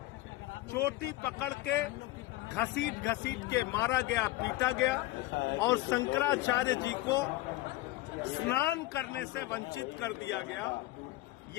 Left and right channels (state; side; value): quieter; right; 18.4 dB